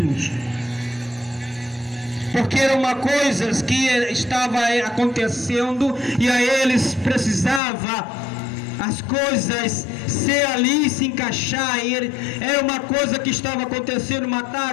porque era uma coisa que estava acontecendo e a eles precisava as coisas ser ali, se encaixar. Era uma coisa que estava acontecendo:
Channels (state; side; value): drops out; right; at 7.6 s